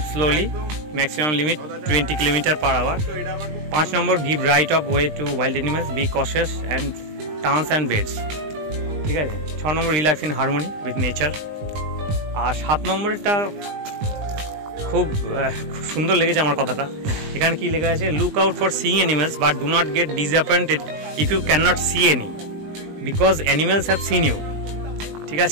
slowly, maximum limit 20 km/h। 5 নম্বর give right of way to wild animals, be cautious and turns and beds. ঠিক আছে। 6 number relax in harmony with nature. আর 7 নম্বরটা খুব সুন্দর লেগেছে আমার কথাটা। এখানে কি লেখা আছে, look out for seeing animals but do not get disappointed if you can not see any because animals have seen you. ঠিক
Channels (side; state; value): left; late; 20 ms